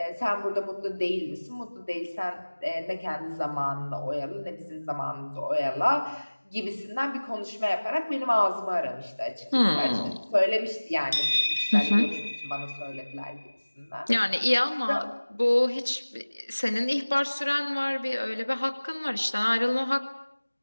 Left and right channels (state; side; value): inverted; both; correlation -1.00